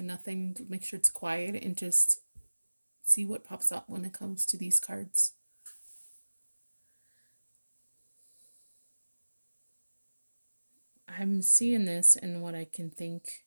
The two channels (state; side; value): inverted; both; correlation -1.00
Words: nothing, make sure it's quiet, and just see what pops up when it comes to these cards. I'm seeing this, and what I can think